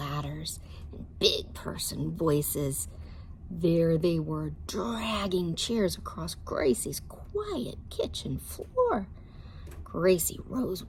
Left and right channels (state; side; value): identical; both; correlation 1.00